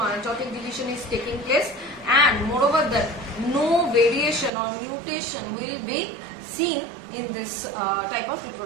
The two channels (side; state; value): left; drops out; at 4.5 s